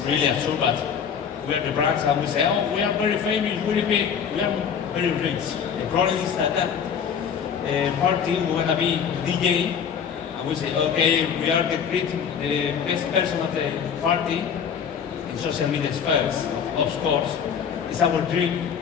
absurd, but we are the brands, and we say, oh, we are very famous, really big, we are very rich. The problem is that party, we want to be DJ, and we say, okay, we are the best person of the party in social media spheres, of course. It's our dream,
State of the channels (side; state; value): right; quieter; 7.4 dB